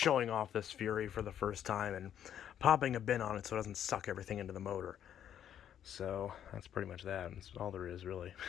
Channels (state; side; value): quieter; right; 9.9 dB